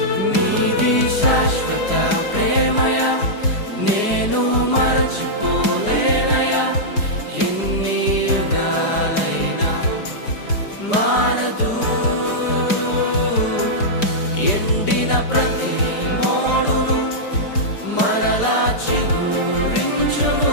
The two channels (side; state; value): right; late; 4.9 ms